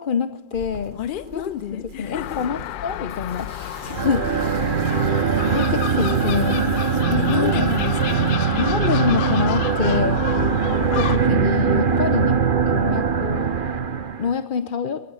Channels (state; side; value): late; right; 2.4 ms